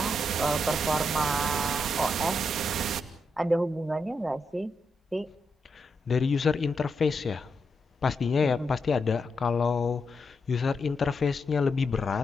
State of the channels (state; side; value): normal; both; correlation 0.83